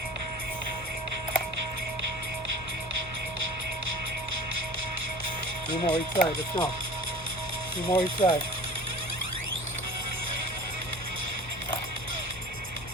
Two more each side. Let's go. Two more each side.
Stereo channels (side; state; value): both; normal; correlation 0.41